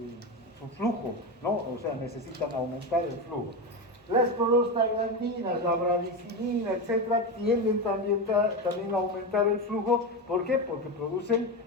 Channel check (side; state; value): both; normal; correlation 0.17